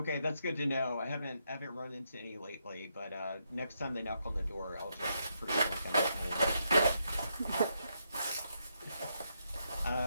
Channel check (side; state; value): both; inverted; correlation -0.79